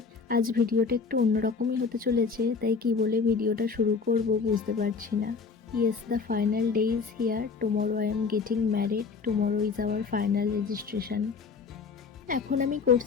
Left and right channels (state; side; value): quieter; right; 5.1 dB